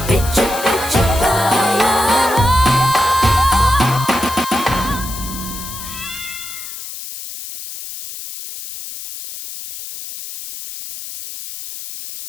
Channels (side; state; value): left; noise; hiss, 10 dB below the sound